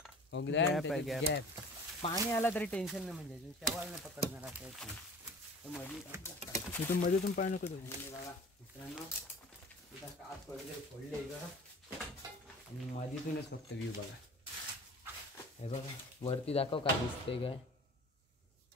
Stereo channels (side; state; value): both; normal; correlation 0.43